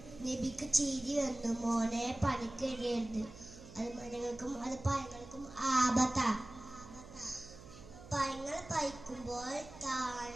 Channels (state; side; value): noise; right; hum, 17 dB below the sound